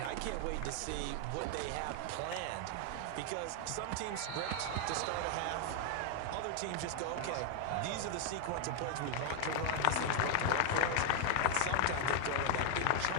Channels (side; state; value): both; different; correlation 0.00